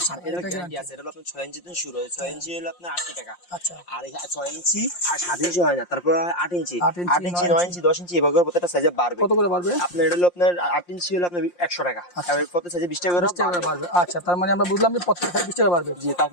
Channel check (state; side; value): late; right; 5.7 ms